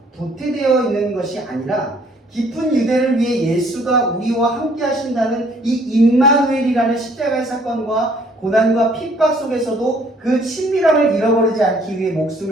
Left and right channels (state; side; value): normal; both; correlation 0.61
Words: 도태되어 있는 것이 아니라 깊은 유대를 위해 예수가 우리와 함께 하신다는 이 임마누엘이라는 십자가의 사건과 고난과 핍박 속에서도 그 친밀함을 잃어버리지 않기 위해